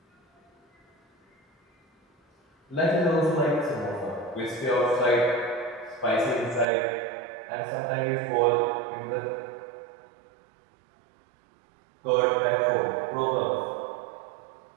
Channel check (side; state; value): left; drops out; at 6.7 s